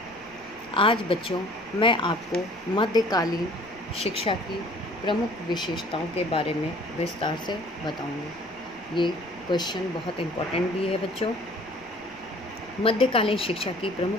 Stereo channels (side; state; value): left; noise; rumble, 26 dB below the sound